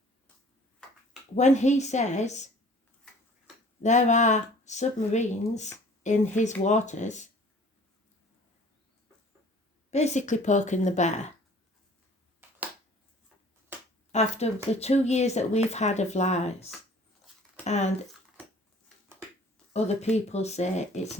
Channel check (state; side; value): normal; both; correlation 0.50